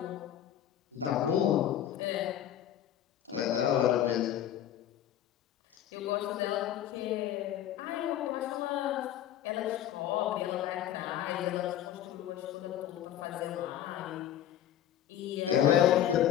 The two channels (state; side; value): quieter; right; 11.2 dB